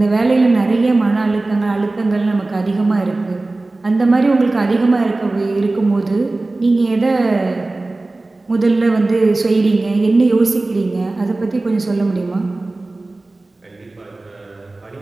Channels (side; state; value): left; quieter; 3.1 dB